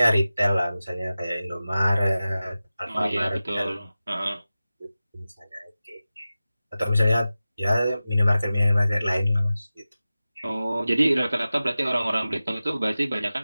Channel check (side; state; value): both; inverted; correlation -0.95